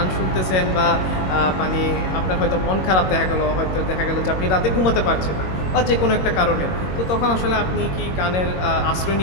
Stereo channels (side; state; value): right; late; 22 ms